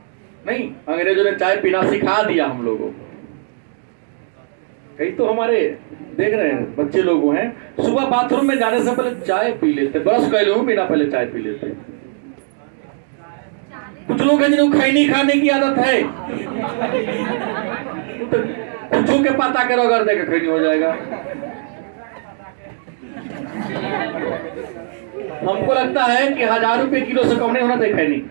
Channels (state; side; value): silent; left; digital silence